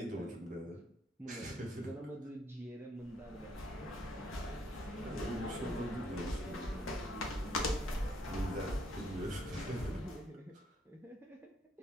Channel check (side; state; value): both; normal; correlation 0.70